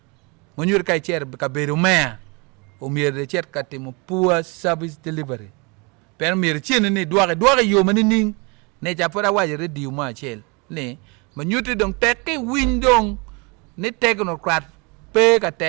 mo nyur kai cher ka beru me o mier de cher ka timo poor service delivery per mier chen ni doare yo mani ning ne ja pora waje redio ma chel ne mo nyuti dong teke windong ni technocrat pe ka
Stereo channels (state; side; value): quieter; left; 30.0 dB